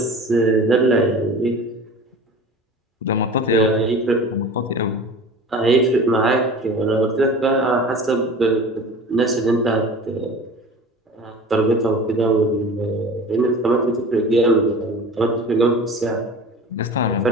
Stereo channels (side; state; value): both; normal; correlation 0.38